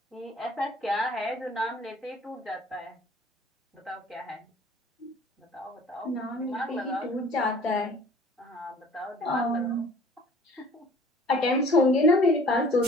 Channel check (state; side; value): normal; both; correlation 0.50